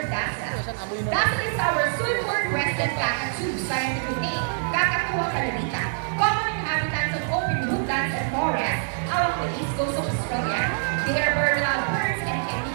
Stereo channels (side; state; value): left; silent; digital silence